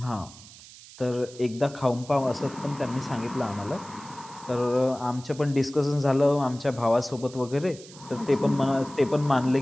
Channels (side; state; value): right; noise; hiss, 19 dB below the sound